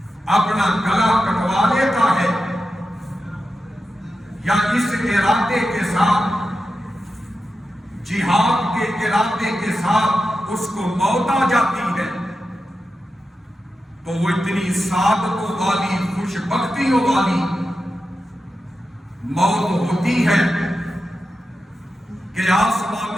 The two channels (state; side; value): normal; both; correlation 0.90